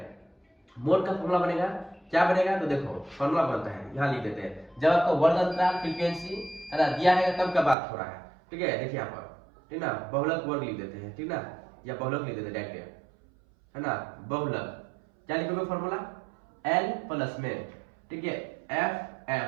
मोड का फॉर्मूला बनेगा, क्या बनेगा, तो देखो फॉर्मूला बनता है, यहाँ लिख देते हैं। जब आपको वर्ग अंतराल फ्रीक्वेंसी है ना दिया है तब का बात हो रहा है। ठीक है, देखिए यहाँ पर, ठीक ना, बहुलक वर्ग लिख देते हैं, ठीक ना, या बहुलक लिख देते हैं डायरेक्ट है ना। बहुलक क्या लिखोगे फॉर्मूला, एल प्लस में, ठीक है, एफ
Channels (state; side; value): drops out; left; at 7.8 s